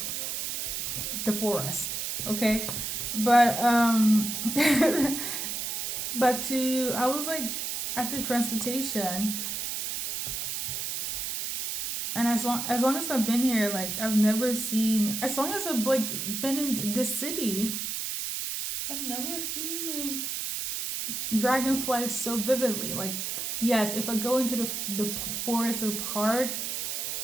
the forest. Okay, but but I was like at the transportation, and as long as I've been here, like I've never seen. As long as I've like been in this city, I've never seen like dragonflies so vividly. Like, yes, if I go into the forest or park,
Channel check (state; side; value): noise; right; hiss, 3 dB below the sound